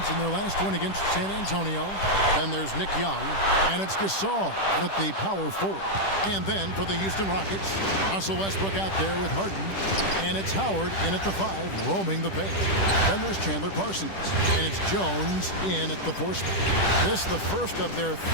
in their last win against San Antonio. Then there's Nick Young, and it's Gasol at the power forward. And then for the Houston Rockets, Russell Westbrook out there with Harden, and it's Howard in at the 5, roaming the paint. Then there's Chandler Parsons, and it's Jones in at the 4 spot. This is the first of their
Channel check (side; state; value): right; late; 10 ms